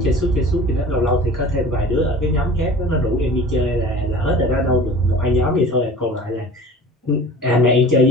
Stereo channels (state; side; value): normal; both; correlation 0.42